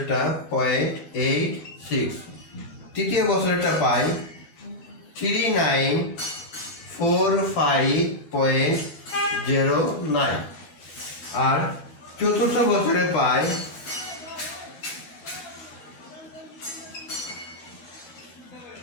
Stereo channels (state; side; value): late; right; 13 ms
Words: 0.86, তৃতীয় বছরেরটা পাই 3945.09, আর চতুর্থ বছরে পাই